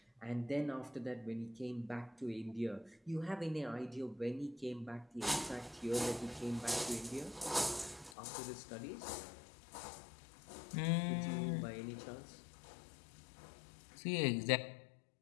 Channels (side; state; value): right; drops out; at 8.2 s